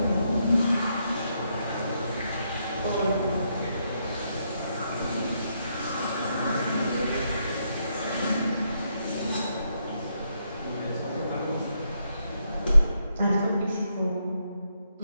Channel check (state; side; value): inverted; both; correlation -0.78